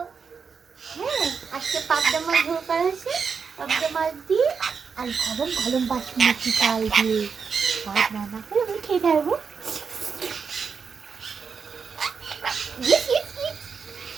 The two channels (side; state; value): left; quieter; 5.8 dB